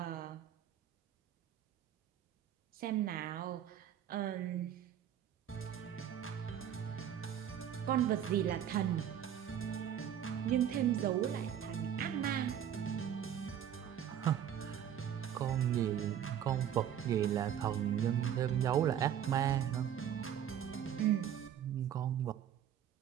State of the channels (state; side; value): quieter; left; 9.7 dB